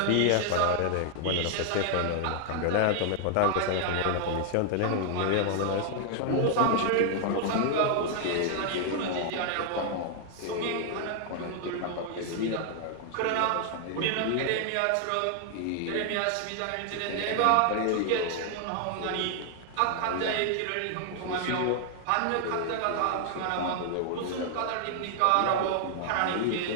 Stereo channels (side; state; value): both; different; correlation 0.00